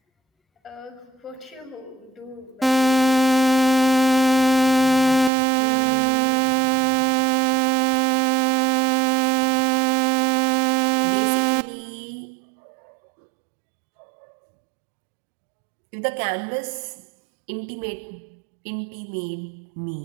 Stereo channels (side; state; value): left; drops out; at 5.3 s